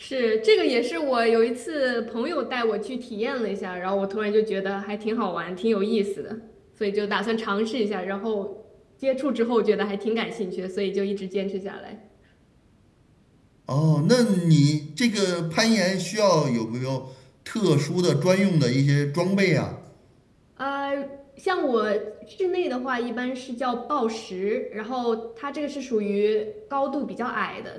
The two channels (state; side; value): identical; both; correlation 1.00